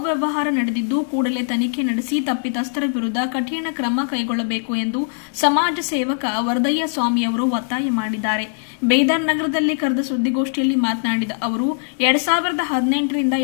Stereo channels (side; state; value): right; silent; digital silence